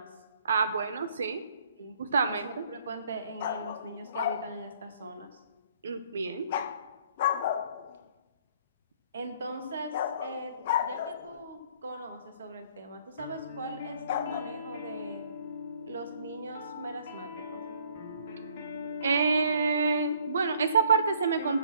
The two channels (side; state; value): both; inverted; correlation -0.61